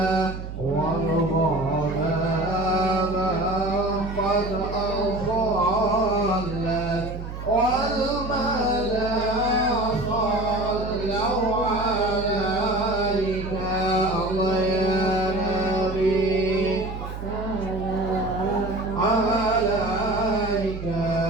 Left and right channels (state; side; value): noise; right; hum, 9 dB below the sound